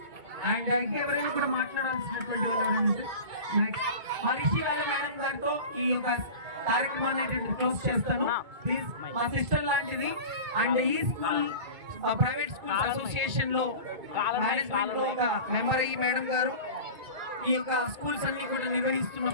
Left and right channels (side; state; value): left; late; 2.2 ms